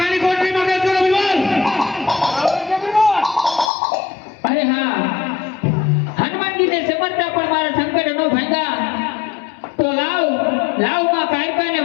કોટરીમાં કેદ કરો વિવાદ. અરે હા, હનુમાનજીને સમરતા પણ મારા સંકટ નો ભાંગા. તો લાવ માં કાયકાને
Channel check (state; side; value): drops out; right; at 3.7 s